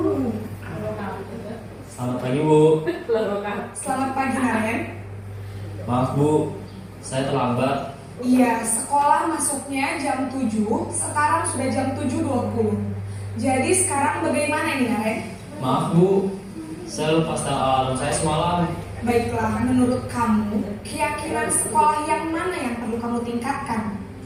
Selamat pagi Bu. selamat pagi Naren. Maaf Bu, saya terlambat. Iya, sekolah masuknya jam 7, sekarang sudah jam 7.20. Jadi sekarang bagaimana ini Naren? Maaf Bu, saya lupa setel alarm saya semalam. Baiklah, menurut kamu, keyakinan sekolah yang mana yang perlu kamu tingkatkan?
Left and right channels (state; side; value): identical; both; correlation 1.00